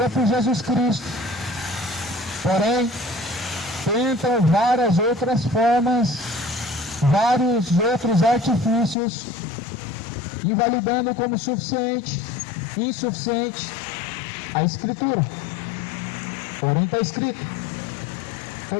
por Jesus Cristo, porém tentam várias outras formas, vários outros artifícios, invalidando como suficiente, insuficiente a Escritura. Porém está escrito:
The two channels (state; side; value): drops out; right; at 9.0 s